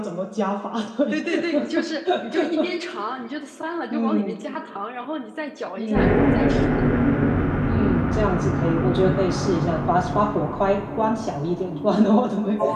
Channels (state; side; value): identical; both; correlation 1.00